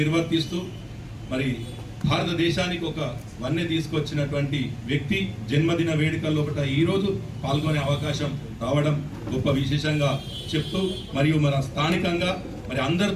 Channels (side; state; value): both; identical; correlation 1.00